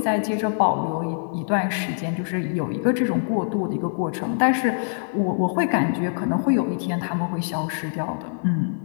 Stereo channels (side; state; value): right; silent; digital silence